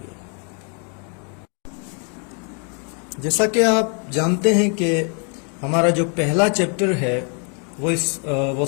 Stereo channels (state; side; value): quieter; right; 39.9 dB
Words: جیسا کہ آپ جانتے ہیں کہ ہمارا جو پہلا چیپٹر ہے وہ